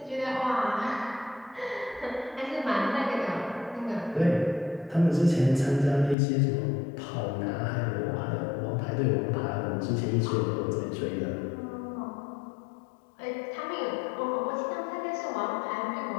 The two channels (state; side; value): drops out; right; at 6.2 s